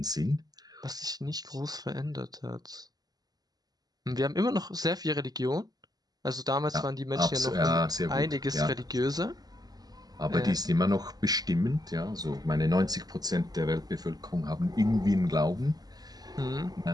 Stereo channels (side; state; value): left; late; 0.19 ms